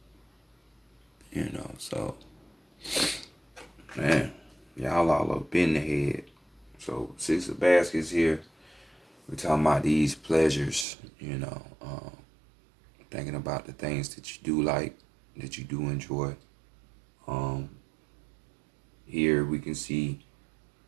you know. So, man, y'all all up in the head. So 6 of Baskets here. We're talking about these pleasures, you know, thinking about the things that you do like, that you do enjoy. Here we can see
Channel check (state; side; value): drops out; left; at 10.9 s